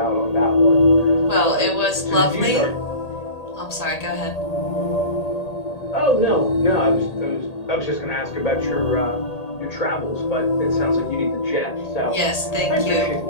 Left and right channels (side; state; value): right; late; 1.8 ms